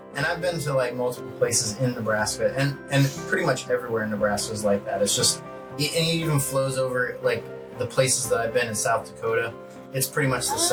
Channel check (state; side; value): identical; both; correlation 1.00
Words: and I've been to multiple places in Nebraska, and pretty much everywhere in Nebraska is like that. It's just, and it even flows over the places that I've been in South Dakota. It's pretty much the